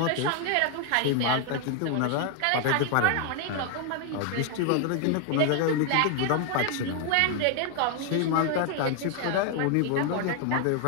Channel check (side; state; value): both; different; correlation 0.00